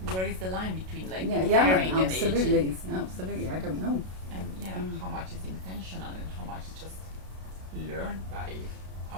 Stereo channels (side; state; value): left; late; 32 ms